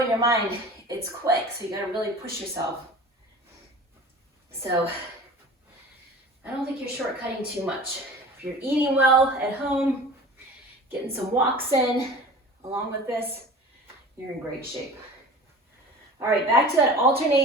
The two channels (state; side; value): normal; both; correlation 0.39